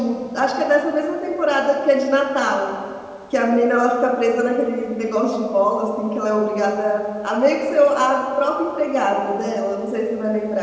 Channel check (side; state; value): both; identical; correlation 1.00